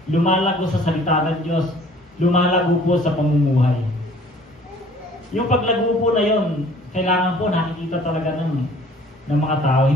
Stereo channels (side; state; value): both; normal; correlation 0.53